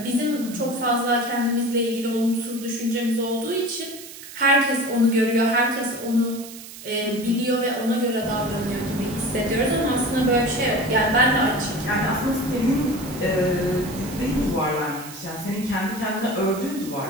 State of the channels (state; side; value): noise; right; hiss, 15 dB below the sound